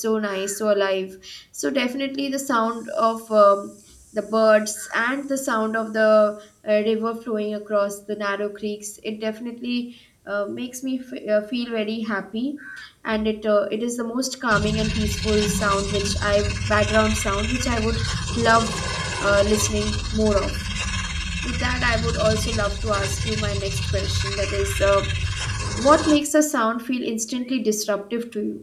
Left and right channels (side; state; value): both; identical; correlation 1.00